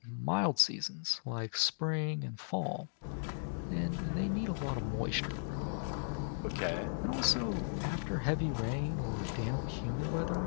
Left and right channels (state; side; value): silent; right; digital silence